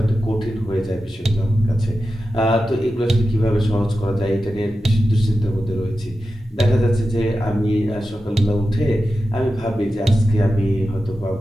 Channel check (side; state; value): both; normal; correlation 0.92